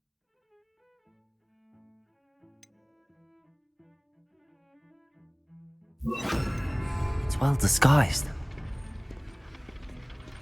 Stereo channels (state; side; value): identical; both; correlation 1.00